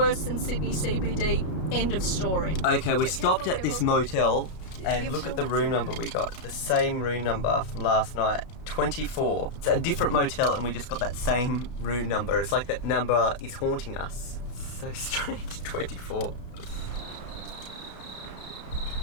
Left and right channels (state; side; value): late; right; 33 ms